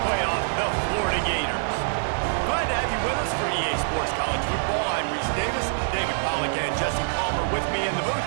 playoff, the Florida Gators. Glad to have you with us for EA Sports College Football. I'm Reese Davis, David Pollack and Jesse Palmer with me in the booth.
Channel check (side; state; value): left; silent; digital silence